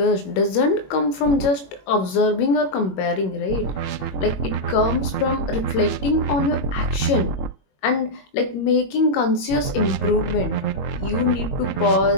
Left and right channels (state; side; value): late; right; 22 ms